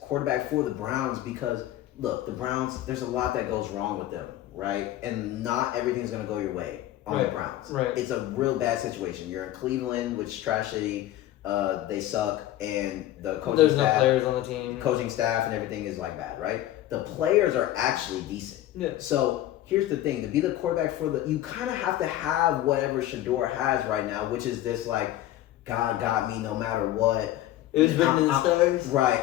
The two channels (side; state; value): right; quieter; 13.9 dB